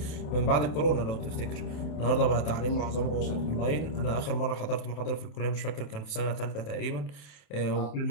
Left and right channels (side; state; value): right; late; 27 ms